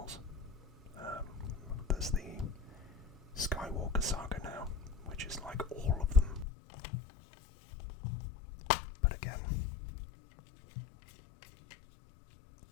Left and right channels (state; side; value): drops out; right; at 6.5 s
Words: There's the Skywalker saga now, which is like all of them. But again,